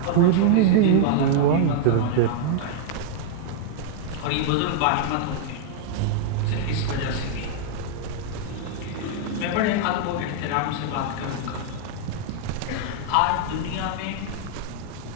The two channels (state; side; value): different; both; correlation -0.01